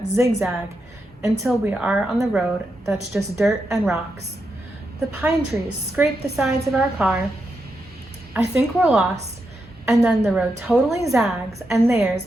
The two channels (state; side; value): normal; both; correlation 0.85